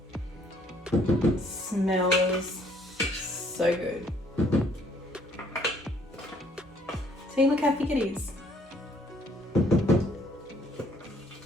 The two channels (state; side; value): normal; both; correlation 0.63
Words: Smells so good. See, look how thick it is.